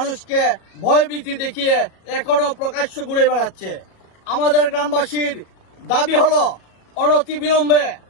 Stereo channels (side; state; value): right; late; 37 ms